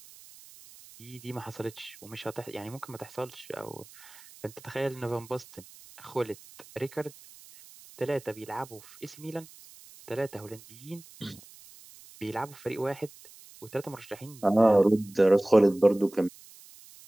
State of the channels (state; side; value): noise; right; hiss, 21 dB below the sound